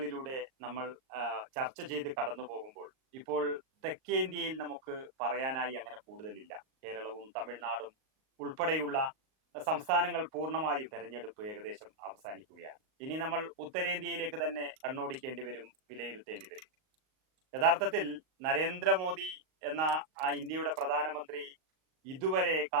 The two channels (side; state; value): left; late; 38 ms